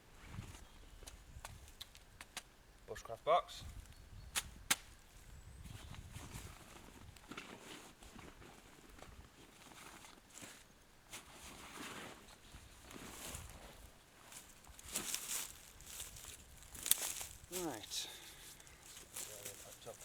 Bushcraft box. Right.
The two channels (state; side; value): identical; both; correlation 1.00